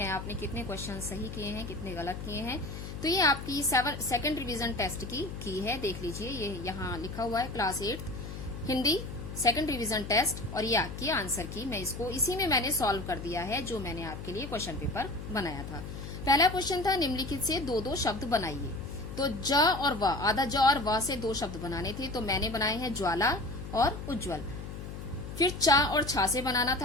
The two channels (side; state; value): left; noise; hum, 9 dB below the sound